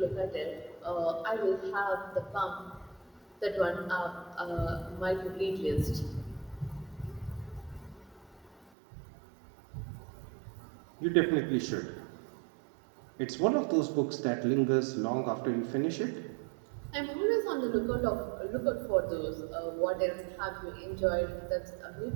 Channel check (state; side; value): drops out; left; at 8.7 s